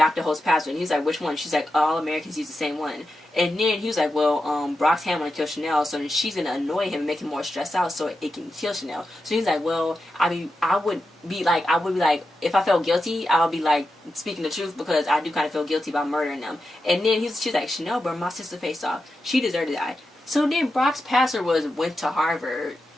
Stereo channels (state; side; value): normal; both; correlation 0.89